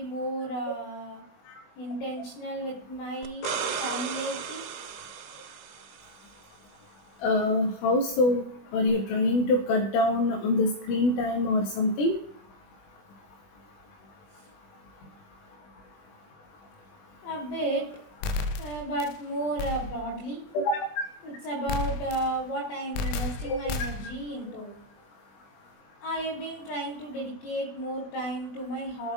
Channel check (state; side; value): late; right; 20 ms